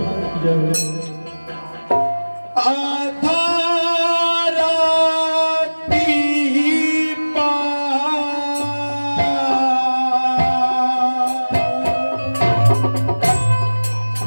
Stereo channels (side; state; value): both; inverted; correlation -1.00